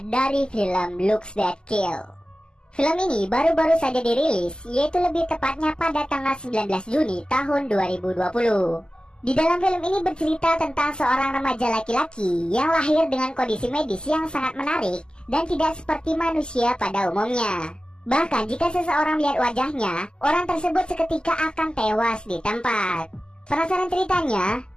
dari film Looks That Kill. Film ini baru-baru saja dirilis, yaitu lebih tepatnya pada tanggal 19 Juni tahun 2020. Di dalam film ini bercerita tentang seorang remaja laki-laki yang lahir dengan kondisi medis yang sangat menarik dan tidak seperti manusia pada umumnya. Bahkan jika seseorang melihat wajahnya, orang tersebut seketika akan tewas di tempat. Penasaran ceritanya?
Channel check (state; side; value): late; right; 0.047 ms